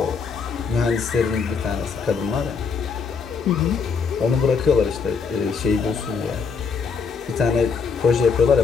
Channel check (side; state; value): right; quieter; 5.5 dB